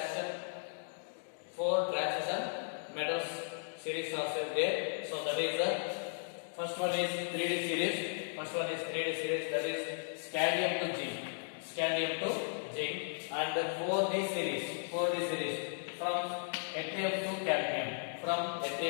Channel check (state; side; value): silent; right; digital silence